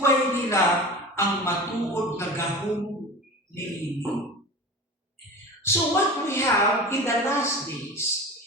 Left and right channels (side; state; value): both; normal; correlation 0.33